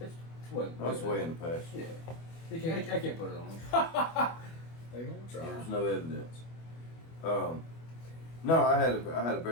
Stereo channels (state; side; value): late; right; 25 ms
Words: what? That's way in the past. Yeah, You can't. I can't put it on. They gonna try. There's no evidence. No, I had a